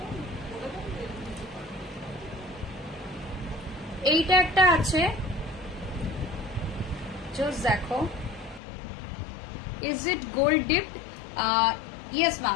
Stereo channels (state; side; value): drops out; right; at 8.6 s